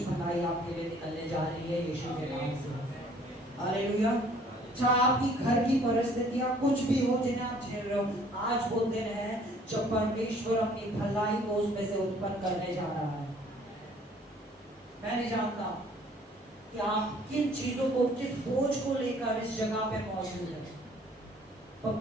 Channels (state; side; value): normal; both; correlation 0.57